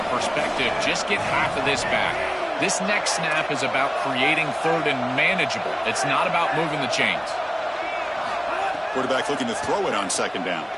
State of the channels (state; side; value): identical; both; correlation 1.00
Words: perspective, just get half of this back. This next snap is about creating 3rd and manageable. It's not about moving the chains. Quarterback looking to throw it on 2nd down.